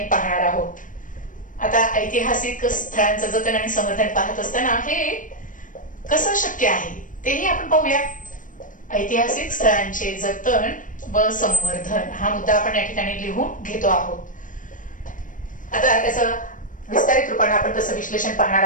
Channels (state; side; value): late; right; 0.38 ms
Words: पाहणार आहोत. आता ऐतिहासिक स्थळांचं जतन आणि संवर्धन पाहत असताना हे कसं शक्य आहे तेही आपण पाहूया. ऐतिहासिक स्थळांचे जतन व संवर्धन हा मुद्दा आपण या ठिकाणी लिहून घेतो आहोत. आता त्याचं विस्तारित रूपाने आपण तसं विश्लेषण पाहणार